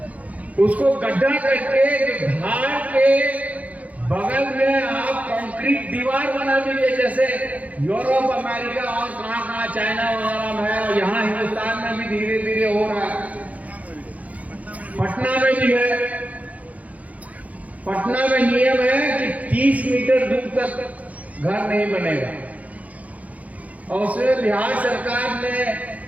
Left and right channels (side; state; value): left; late; 0.070 ms